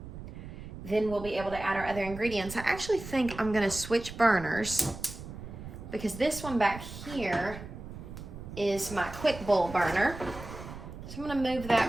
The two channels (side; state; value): right; noise; rumble, 12 dB below the sound